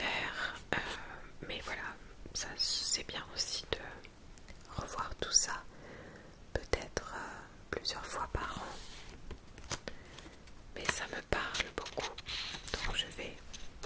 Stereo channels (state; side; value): identical; both; correlation 1.00